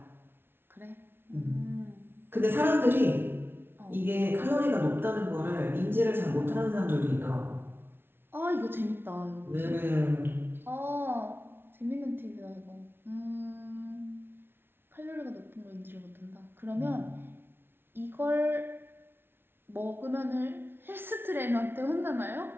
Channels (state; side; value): late; left; 0.11 ms